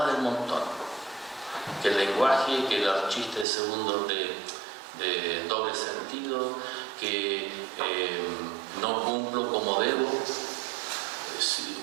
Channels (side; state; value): left; drops out; at 3.5 s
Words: del montón. Que el lenguaje, que los chistes segundos de doble sentido, que no cumplo como debo.